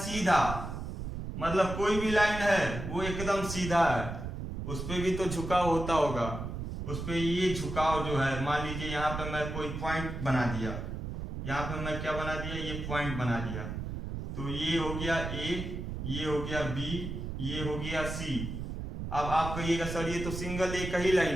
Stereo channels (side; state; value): right; noise; rumble, 6 dB below the sound